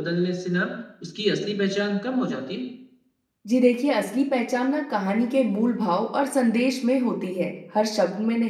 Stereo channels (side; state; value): both; identical; correlation 1.00